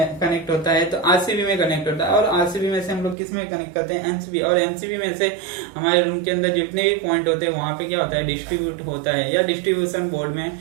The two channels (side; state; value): left; drops out; at 3.2 s